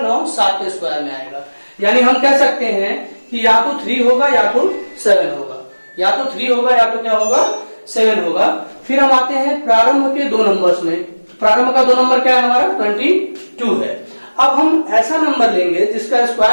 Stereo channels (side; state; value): both; inverted; correlation -1.00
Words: 9 7 के स्क्वायर में आएगा। यानी हम कह सकते हैं कि या तो 3 होगा या तो 7 होगा, या तो 3 होगा या तो क्या होगा 7 होगा। फिर हम आते हैं प्रारंभ के 2 नंबर्स में। प्रारंभ का 2 नंबर क्या है हमारा 22 है। अब हम ऐसा नंबर लेंगे जिसका